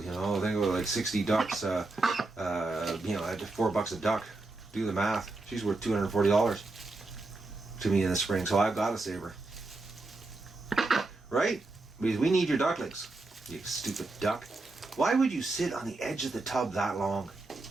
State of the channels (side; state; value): left; quieter; 3.3 dB